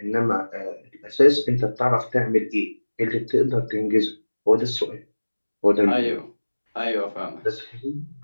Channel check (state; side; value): inverted; both; correlation -1.00